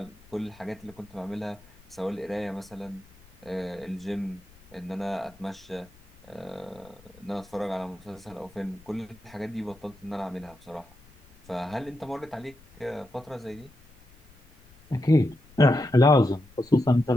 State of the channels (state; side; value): noise; left; rumble, 26 dB below the sound